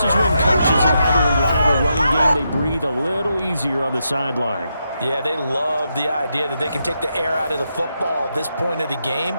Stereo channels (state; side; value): inverted; both; correlation -0.83